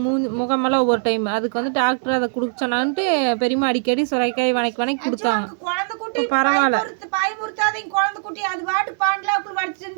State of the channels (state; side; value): silent; left; digital silence